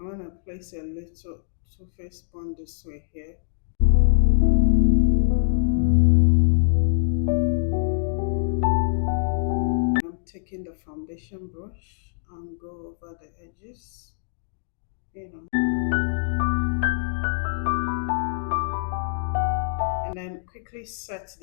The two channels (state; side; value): silent; right; digital silence